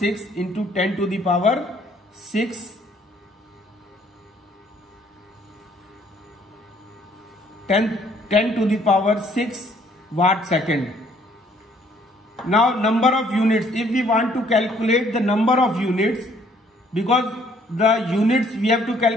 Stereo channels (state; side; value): normal; both; correlation 0.63